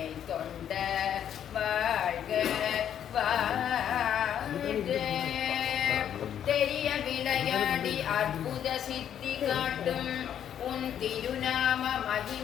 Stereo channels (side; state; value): right; quieter; 9.6 dB